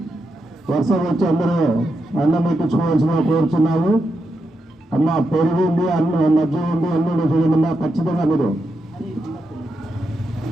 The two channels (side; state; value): both; normal; correlation 0.85